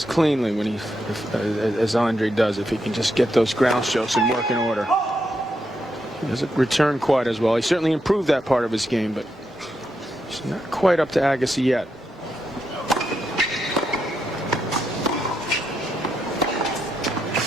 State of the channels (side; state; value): both; normal; correlation 0.82